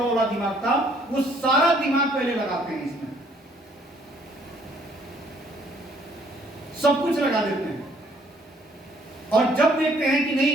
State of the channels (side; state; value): both; normal; correlation 0.63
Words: वाला दिमाग था, वो सारा दिमाग पहले लगाते हैं, इसमें सब कुछ लगा देते हैं। और जब देखते हैं कि नहीं